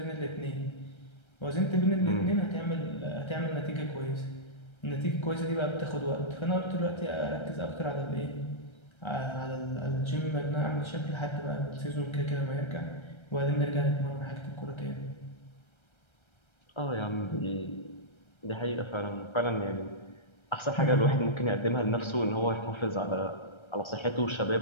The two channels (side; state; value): right; late; 1.3 ms